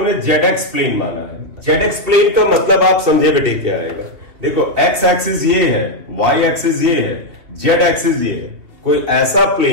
ZX प्लेन माना है। ZX प्लेन का मतलब आप समझे बेटे क्या रहेगा, देखो X एक्सिस ये है, Y एक्सिस ये है, Z एक्सिस ये है। कोई ऐसा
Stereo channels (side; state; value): left; late; 3.1 ms